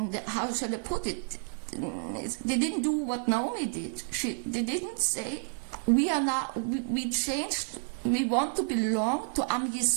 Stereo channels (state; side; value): silent; left; 58 dB below the other